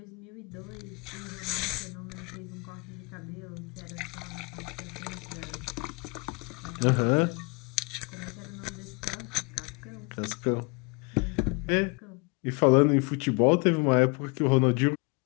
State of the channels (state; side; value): quieter; right; 30.5 dB